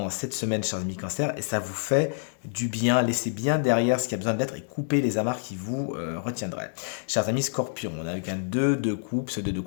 cette semaine, chers amis Cancer, et ça vous fait du bien, laissez bien derrière ce qui a besoin d'être et coupez les amarres qui vous retiendraient. Chers amis Scorpion, on a avec un 2 de coupe, ce 2 de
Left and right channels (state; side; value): silent; right; digital silence